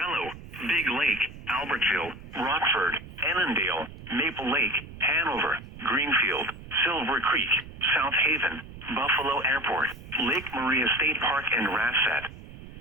Big Lake, Albertville, Rockford, Annandale, Maple Lake, Hanover, Greenfield, Silver Creek, South Haven, Buffalo Airport, Lake Maria State Park, and Rassat.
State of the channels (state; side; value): noise; right; rumble, 15 dB below the sound